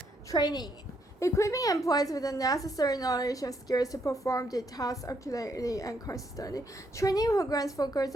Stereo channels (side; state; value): both; normal; correlation 0.74